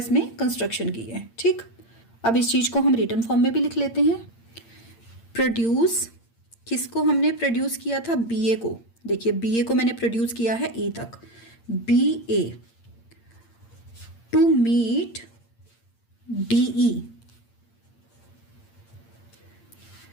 कंस्ट्रक्शन की है। ठीक। अब इस चीज को हम रिटर्न फॉर्म में भी लिख लेते हैं। प्रोड्यूस, किसको हमने प्रोड्यूस किया था, BA को। देखिए BA को मैंने प्रोड्यूस किया है E तक। BA टू मीट DE,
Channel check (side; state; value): right; late; 8.7 ms